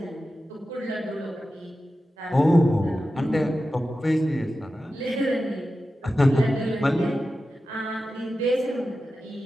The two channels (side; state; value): both; normal; correlation 0.92